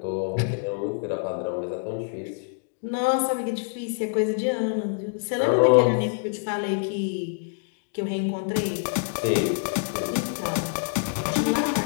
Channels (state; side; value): silent; right; digital silence